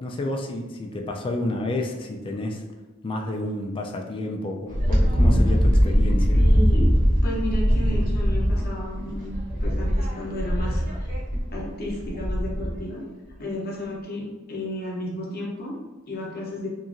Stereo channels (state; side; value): normal; both; correlation 0.92